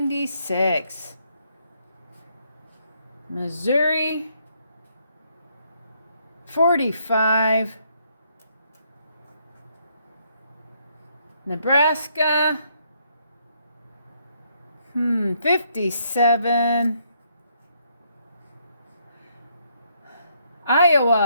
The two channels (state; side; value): inverted; both; correlation -0.72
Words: Missouri, 45. Nebraska, 57.